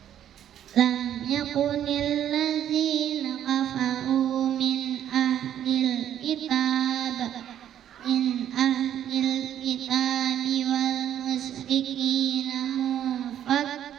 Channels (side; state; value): left; quieter; 10.5 dB